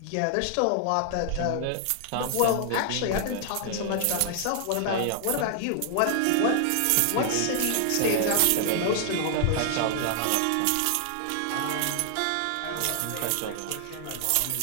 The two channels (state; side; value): different; both; correlation 0.00